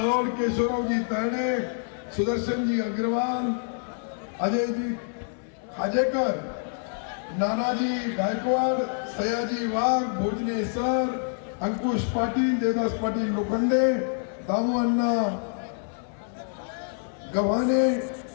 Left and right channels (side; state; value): right; silent; 60 dB below the other